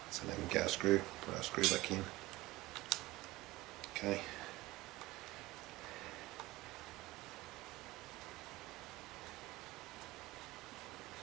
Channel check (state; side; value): quieter; left; 19.3 dB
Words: So then we can get our screw, put our screw back in. Okay.